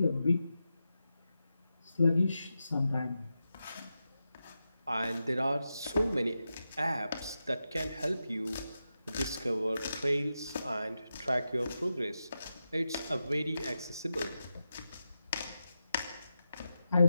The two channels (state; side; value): inverted; both; correlation -0.90